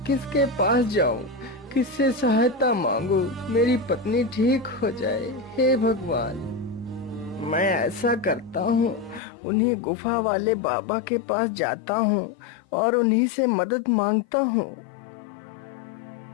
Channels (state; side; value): drops out; right; at 9.2 s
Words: पास जाऊं, किससे सहायता मांगू, मेरी पत्नी ठीक हो जाए। हे भगवान, मैं ऐसा करता हूँ, उन्हीं गुफा वाले बाबा के पास जाता हूँ और उन्हीं से मदद मांगता हूँ।